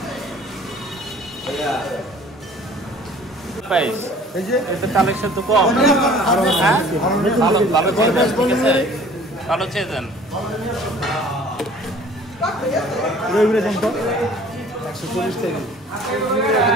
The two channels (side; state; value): both; normal; correlation 0.50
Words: কালেকশন তো কম। ভালো চেয়েছেন।